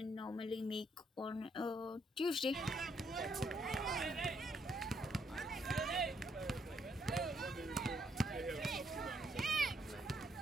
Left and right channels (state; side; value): normal; both; correlation 0.73